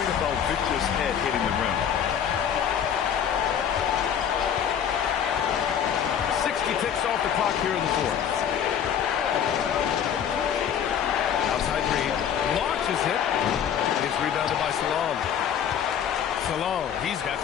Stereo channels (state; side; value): quieter; right; 8.7 dB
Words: about Victor's head hitting the rim. 60 ticks off the clock here in the 4th. Outside Reed. Launches it. It's rebounded by Salon. Salon, he's got